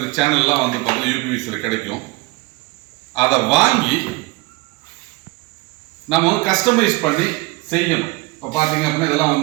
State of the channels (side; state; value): left; quieter; 23.5 dB